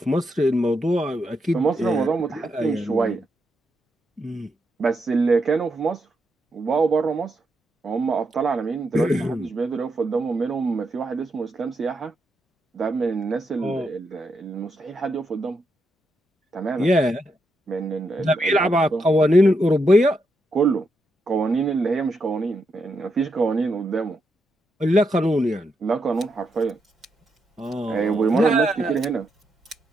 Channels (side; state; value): both; normal; correlation 0.82